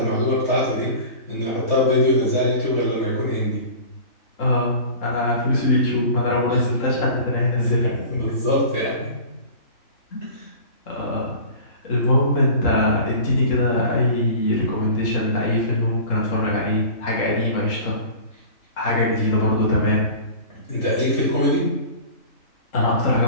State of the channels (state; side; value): late; right; 3.3 ms